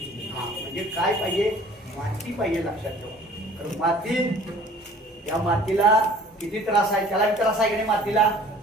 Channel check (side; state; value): both; normal; correlation 0.51